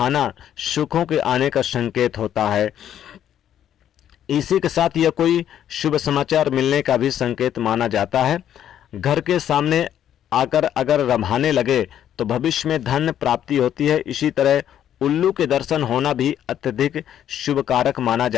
सुखों के आने का संकेत होता है। इसी के साथ यह कोई शुभ समाचार मिलने का भी संकेत माना जाता है। घर के सामने आकर अगर रभाने लगे तो भविष्य में धन प्राप्ति होती है। इसी तरह उल्लू के दर्शन होना भी अत्यधिक शुभ कारक माना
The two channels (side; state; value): right; quieter; 10.4 dB